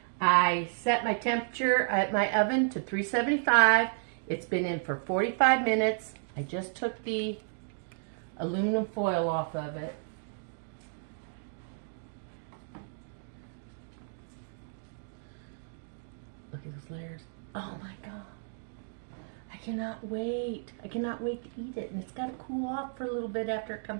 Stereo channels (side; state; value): left; silent; digital silence